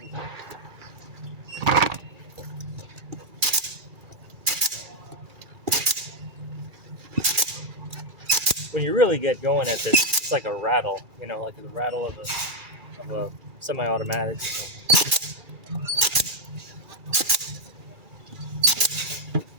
When you really get going at this, it's like a rattle, like the rattle of a semi-automatic or something.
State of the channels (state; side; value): late; left; 2.3 ms